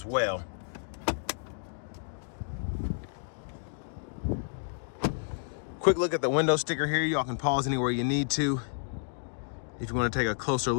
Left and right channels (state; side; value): silent; right; digital silence